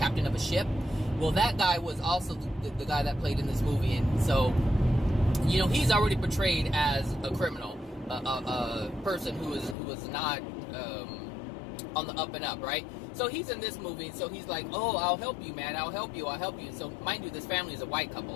of a ship. Well, that guy was also the guy that played in this movie, and so, you know, he's already portrayed as a criminal, a person who was not on the up and up, right? So he's in this movie, so he's like, oh, I'll help you, man, I'll help you. So, mind you, this family is a white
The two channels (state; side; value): drops out; right; at 9.8 s